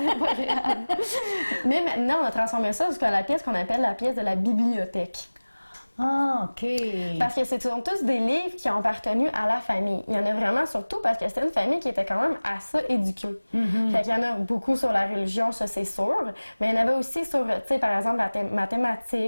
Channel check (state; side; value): inverted; both; correlation -1.00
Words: Mais maintenant, on a transformé ça jusqu'à la pièce qu'on appelle la pièce de la bibliothèque. Ah, OK. Parce que ce sont tous des livres qui ont appartenu à la famille. Il y en a vraiment surtout parce que c'était une famille qui était quand même assez éduquée. Fait qu'il y en a beaucoup sur la religion, ça c'est sûr. Mais il y en avait aussi sur, tu sais, par exemple, la